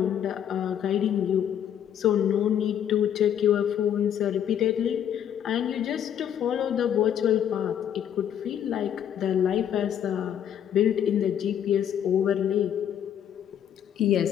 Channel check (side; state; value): right; quieter; 9.5 dB